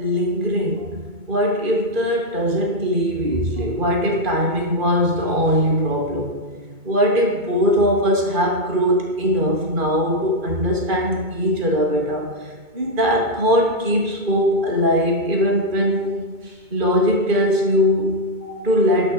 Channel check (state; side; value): late; left; 2.2 ms